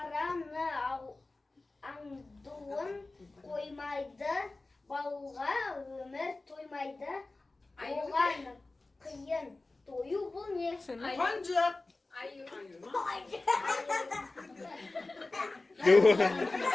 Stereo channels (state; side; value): quieter; right; 3.2 dB